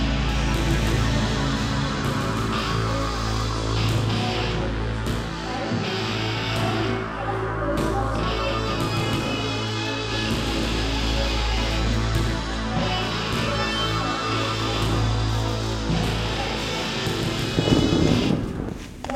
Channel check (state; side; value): identical; both; correlation 1.00